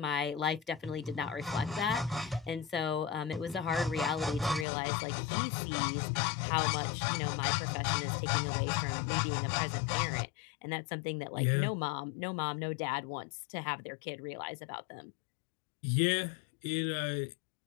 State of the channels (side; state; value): right; drops out; at 4.7 s